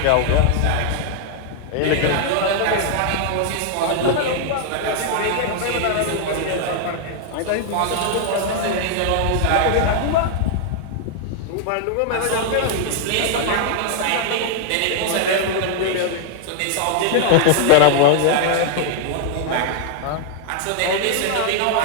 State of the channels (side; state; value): both; different; correlation 0.00